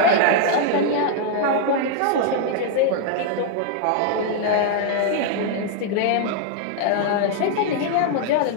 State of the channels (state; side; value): different; both; correlation -0.01